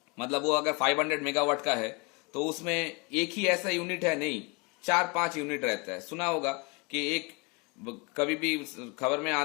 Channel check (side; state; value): right; quieter; 29.3 dB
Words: मतलब वो अगर 500 मेगावाट का है तो उसमें एक ही ऐसा यूनिट है नहीं, 4-5 यूनिट रहता है. सुना होगा कि एक कभी भी खबर में